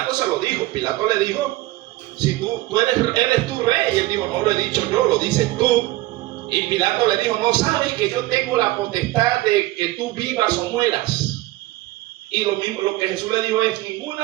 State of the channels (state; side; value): quieter; left; 18.0 dB